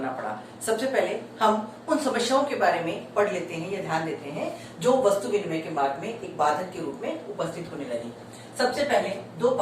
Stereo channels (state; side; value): identical; both; correlation 1.00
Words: पड़ा। सबसे पहले हम उन समस्याओं के बारे में पढ़ लेते हैं या ध्यान देते हैं जो वस्तु विनिमय के मार्ग में एक बाधक के रूप में उपस्थित होने लगी। सबसे पहले दो